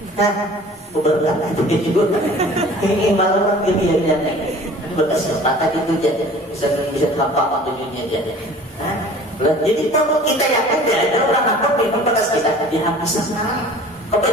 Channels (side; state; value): both; normal; correlation 0.46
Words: beberapa itu juga ini malah kejadian berkesempatan itu jadi bisa tampak tujuannya jadi. Jadi kalau kita yakin ada orang apa minum bekas kita dia habis sekarang.